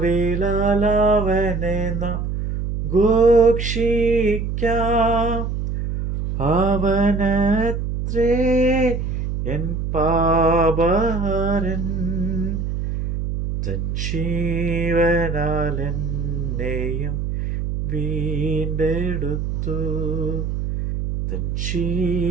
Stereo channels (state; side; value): noise; right; hum, 3 dB below the sound